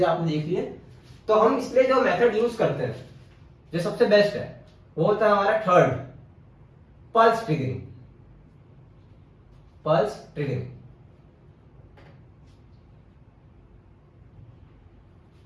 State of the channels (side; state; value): both; identical; correlation 1.00